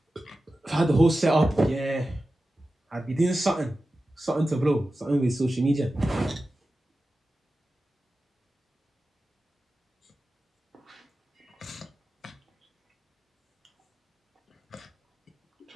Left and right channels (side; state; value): both; normal; correlation 0.94